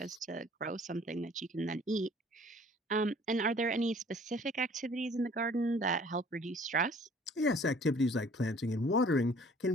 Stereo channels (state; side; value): normal; both; correlation 0.54